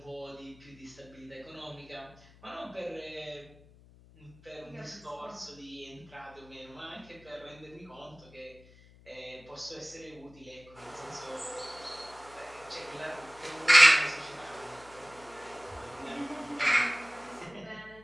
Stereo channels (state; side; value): noise; left; hum, 24 dB below the sound